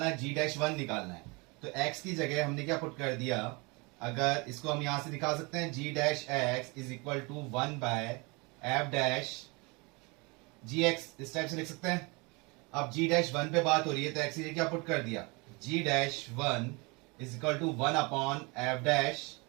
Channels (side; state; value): left; quieter; 28.0 dB